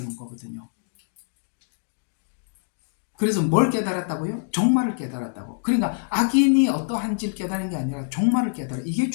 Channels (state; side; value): silent; right; digital silence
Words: 거거든요. 그래서 뭘 깨달았다고요? 종말을 깨달았다고. 그러니까 악인이 어떠한지를 깨달은 게 아니라 종말을 깨달아. 이게